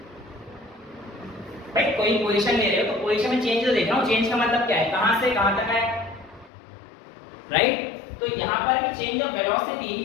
भाई कोई पोजीशन ले रहे हो तो पोजीशन में चेंज तो देख रहा हूँ, चेंज का मतलब क्या है, कहां से कहां तक है, राइट। तो यहाँ पर भी चेंज ऑफ वेलोसिटी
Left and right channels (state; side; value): drops out; right; at 6.5 s